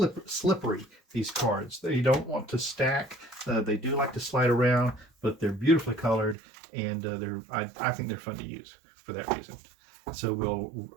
these cards. You don't want to stack. They do like to slide around, but they're beautifully colored, and I think they're fun to use for that reason. So we'll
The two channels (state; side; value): drops out; left; at 6.4 s